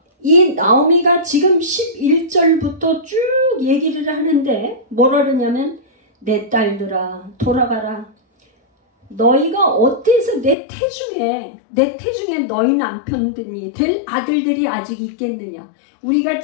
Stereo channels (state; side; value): drops out; right; at 10.6 s